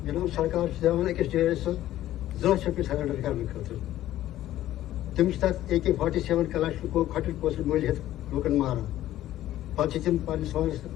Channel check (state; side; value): quieter; right; 13.7 dB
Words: जनाब सरकार अकिस डेस जॉब सरेंडर करने खतर तमिस तक AK-47 कलाशको खटल पोस्ट मोल लूकन मारान पे तम पस